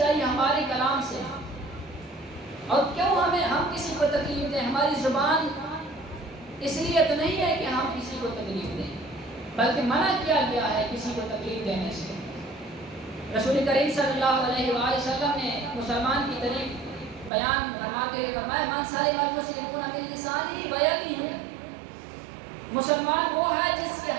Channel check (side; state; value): left; drops out; at 17.3 s